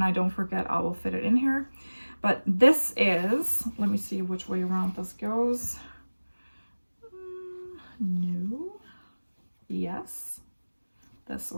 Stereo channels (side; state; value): both; inverted; correlation -1.00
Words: I don't forget, I will fit it in here. But this is, let me see which way around this goes. No. Yes. this